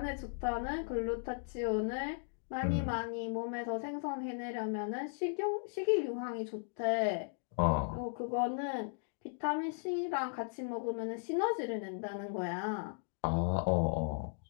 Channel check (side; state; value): right; silent; digital silence